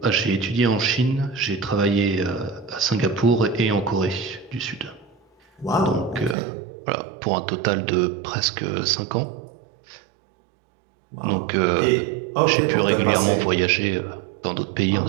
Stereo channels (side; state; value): left; drops out; at 6.4 s